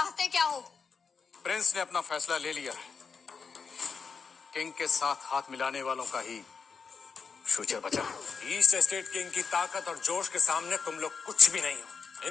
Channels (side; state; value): right; quieter; 5.6 dB